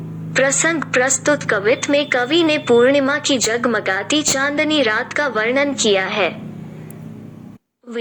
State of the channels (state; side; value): identical; both; correlation 1.00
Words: प्रसंग प्रस्तुत कवित में कवि ने पूर्णिमा की जगमगाती चांदनी रात का वर्णन किया है।